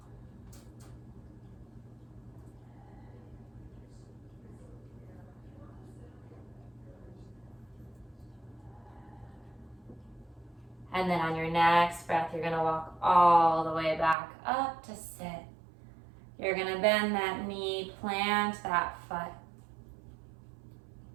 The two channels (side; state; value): left; drops out; at 14.2 s